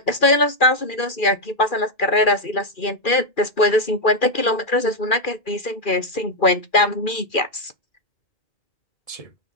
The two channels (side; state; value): right; late; 2.4 ms